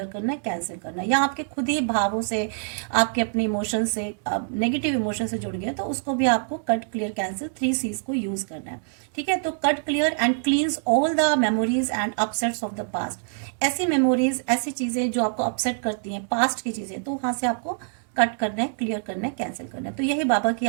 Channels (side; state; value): left; silent; digital silence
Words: करना है, कैंसिल करना है। या आपके खुद ही भावों से, आपके अपने इमोशन से, नेगेटिव इमोशन से जुड़ गए तो उसको भी आपको कट, क्लियर, कैंसिल 3 C's को यूज करना है। ठीक है, तो cut, clear and क्लींस all the memories and upsets of the past. ऐसी मेमोरीज, ऐसी चीजें जो आपको अपसेट करती हैं, पास्ट की चीजें, तो वहां से आपको कट करना है, क्लियर करना है, कैंसिल करना है। तो यही बाबा की